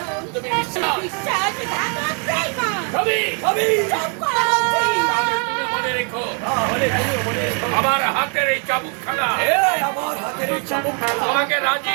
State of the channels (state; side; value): quieter; left; 38.0 dB